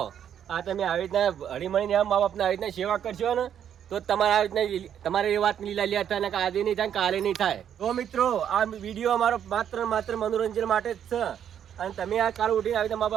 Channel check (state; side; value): quieter; left; 9.3 dB